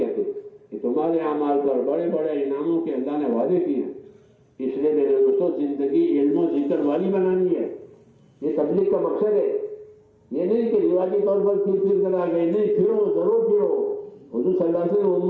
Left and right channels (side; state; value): both; identical; correlation 1.00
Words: ہیں کہ تمہارے اعمال پر بڑے بڑے انعاموں کے اللہ نے وعدے کیے ہیں۔ اس لیے میرے دوستوں زندگی علم و ذکر والی بنانی ہے۔ یہ تبلیغ کا مقصد ہے، یہ نہیں کہ رواجی طور پر پھر کر آ گئے، نہیں، پھرو ضرور پھرو۔ حضور صلی اللہ علیہ وسلم نے